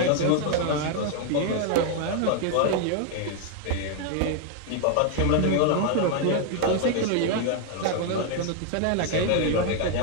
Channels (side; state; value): both; different; correlation 0.00